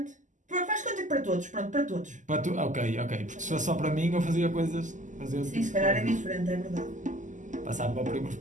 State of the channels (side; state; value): left; late; 0.37 ms